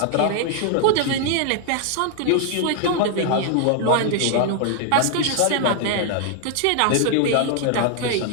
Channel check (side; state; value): both; different; correlation 0.00